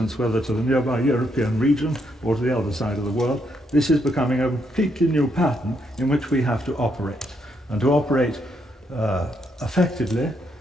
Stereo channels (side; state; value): both; normal; correlation 0.76